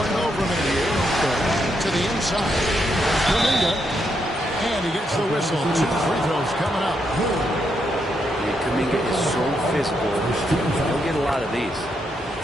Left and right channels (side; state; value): both; normal; correlation 0.79